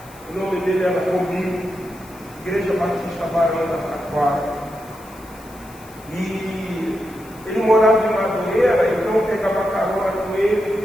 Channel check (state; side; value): noise; left; hiss, 23 dB below the sound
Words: o nome dele era Romil, Igreja Batista Barão da Taquara. E ele morava em Madureira, então eu pegava carona com ele,